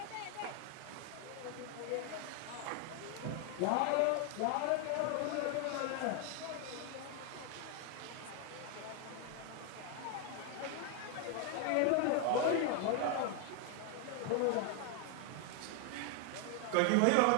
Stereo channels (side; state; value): both; different; correlation 0.01